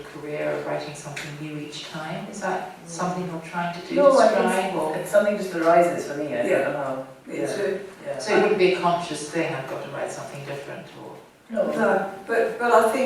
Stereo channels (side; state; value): both; identical; correlation 1.00